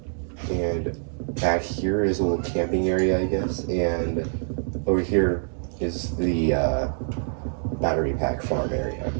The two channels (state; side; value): silent; left; 59 dB below the other